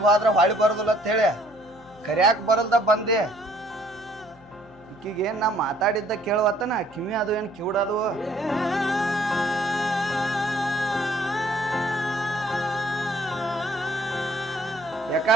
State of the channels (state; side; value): noise; left; hum, 25 dB below the sound